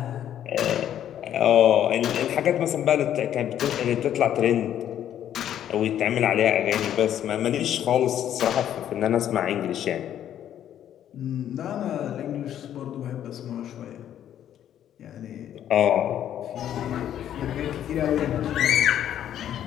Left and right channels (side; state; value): right; quieter; 10.6 dB